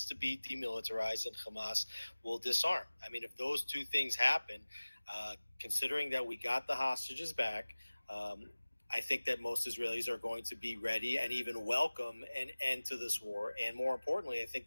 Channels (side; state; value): both; inverted; correlation -1.00